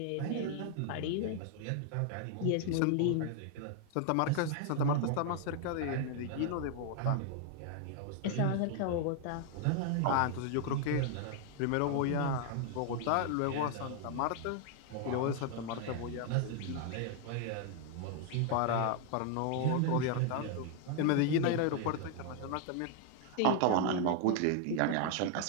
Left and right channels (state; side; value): different; both; correlation 0.00